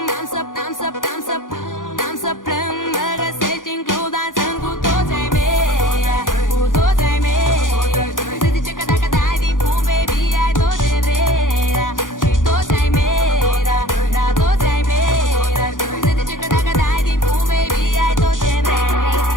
n-am să, n-am să, n-am să, n-am să plâng. Mă găsești în club dansând cu toți ai mei, cu toți ai mei. Se zice că dacă dai din pum, baby, ai tot ce vrei, da. Și toți ai mei, da, da, toți ai mei, da. Se zice că dacă dai din pum, baby, ai tot ce vrei.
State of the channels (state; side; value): late; right; 0.89 ms